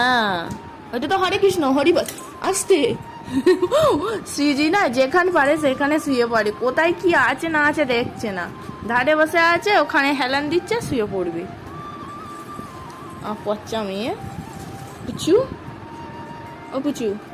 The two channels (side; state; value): both; identical; correlation 1.00